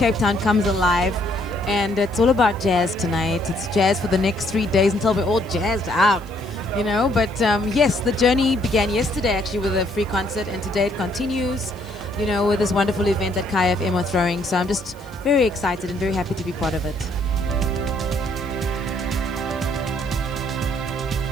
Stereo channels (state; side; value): noise; left; hiss, 27 dB below the sound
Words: Town comes alive. And it's all about jazz tonight. It's jazz for the next 3 days until we're all jazzed out, you know. But yes, the journey began yesterday actually with a free concert, and today it continues, you know, with this wonderful event that Kai FM are throwing. So I'm just very excited and very happy to be part of it.